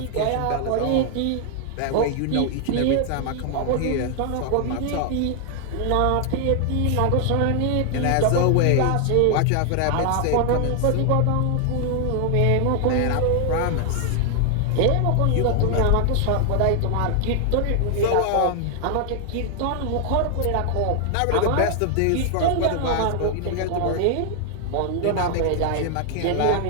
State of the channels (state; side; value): different; both; correlation 0.00